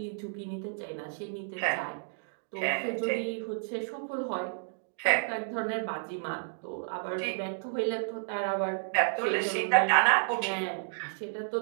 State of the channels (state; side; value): silent; left; digital silence